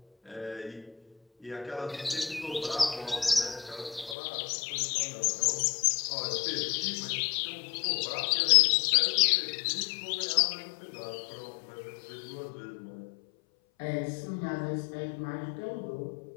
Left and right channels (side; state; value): right; drops out; at 4.2 s